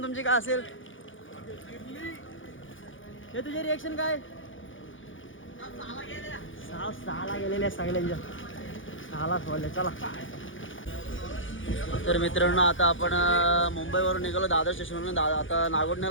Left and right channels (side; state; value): right; late; 0.57 ms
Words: तुमची काय असेल? हे तुझे रिएक्शन काय? सहाला गेलेल्या सगळ्यांच्या 6लाच बोलले. चला तर मित्रांनो आता आपण मुंबईवरून निघालो दादर स्टेशनवरून. आता